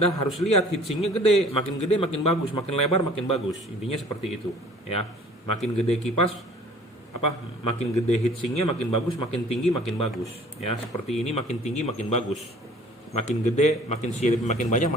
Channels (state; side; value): normal; both; correlation 0.51